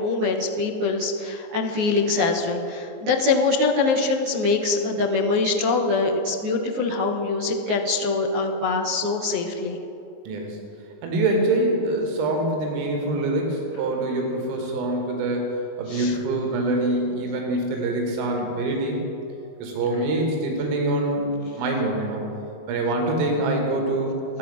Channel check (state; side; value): late; left; 19 ms